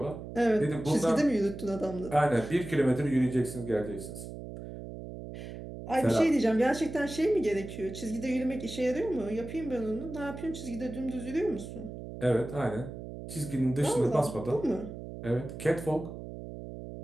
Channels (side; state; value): right; noise; hum, 10 dB below the sound